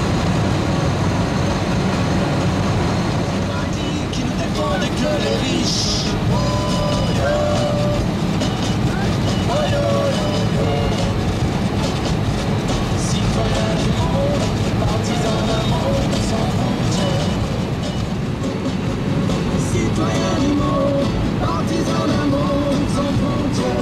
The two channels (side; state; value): both; identical; correlation 1.00